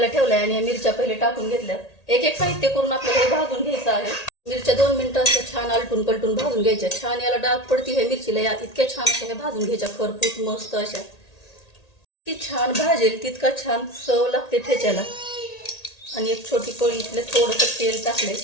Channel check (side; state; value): right; late; 1.8 ms